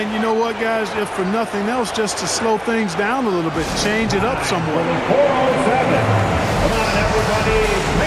you know what, guys? If for nothing else, just to slow things down a little bit, change it up somewhat. 407. Come on, everybody,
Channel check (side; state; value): both; identical; correlation 1.00